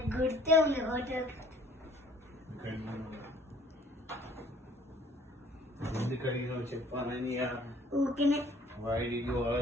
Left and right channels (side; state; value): both; normal; correlation 0.56